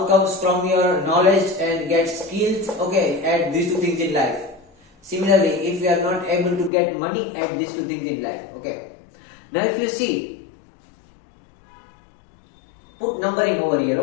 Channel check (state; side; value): drops out; right; at 6.7 s